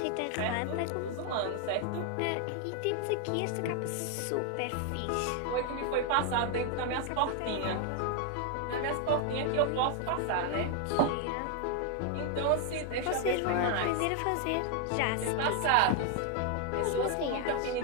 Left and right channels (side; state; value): both; different; correlation 0.00